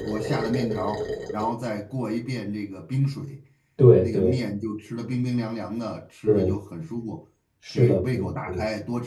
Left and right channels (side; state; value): both; identical; correlation 1.00